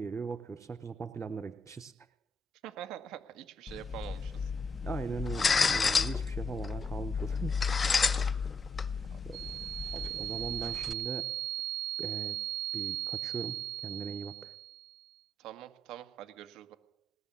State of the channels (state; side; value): normal; both; correlation 0.76